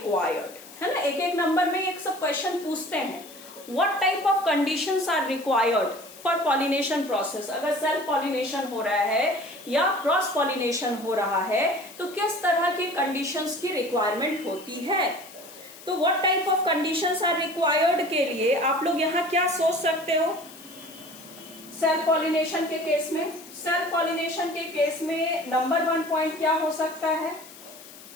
है ना. एक नंबर में एक सब क्वेश्चन पूछते हैं. What type of conditions are required for pollination process. अगर सेल्फ पॉलिनेशन हो रहा है या क्रॉस पॉलिनेशन हो रहा है, तो किस तरह की कंडीशंस की रिक्वायरमेंट होती है. तो what type of conditions are required के लिए आप लोग यहाँ क्या सोच सकते हो सेल्फ पॉलिनेशन के केस में. सेल्फ पॉलिनेशन के केस में नंबर 1 पॉइंट क्या हो सकता है?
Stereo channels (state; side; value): noise; left; hiss, 18 dB below the sound